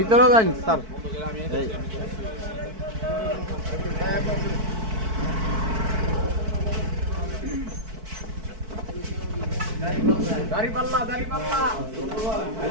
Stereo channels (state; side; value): late; left; 4.6 ms